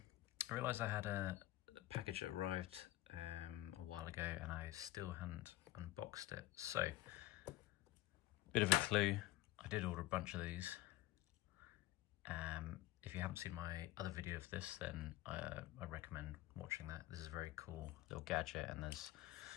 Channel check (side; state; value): right; quieter; 16.5 dB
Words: realised I had a package that arrived a while ago and I still hadn't unboxed it. So, bit of a clue, I did order a bunch of these. If you haven't seen my other video of this, then I recommend watching that. This is a very cool little gadget, and there's